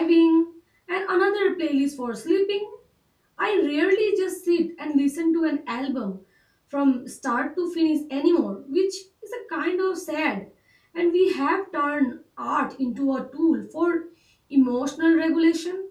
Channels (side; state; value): both; identical; correlation 1.00